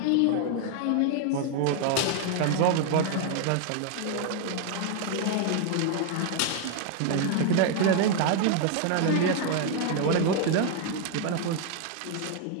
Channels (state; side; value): different; both; correlation 0.00